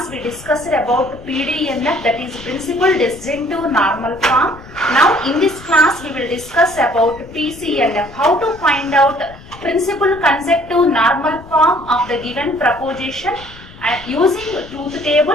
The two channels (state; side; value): noise; left; rumble, 19 dB below the sound